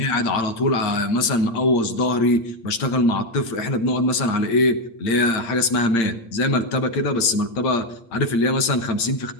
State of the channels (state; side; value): late; right; 8.7 ms